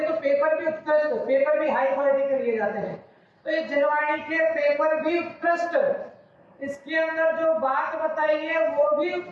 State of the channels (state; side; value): identical; both; correlation 1.00